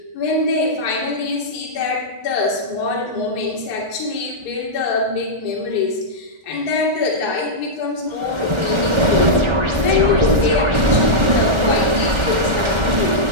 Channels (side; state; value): left; late; 1.4 ms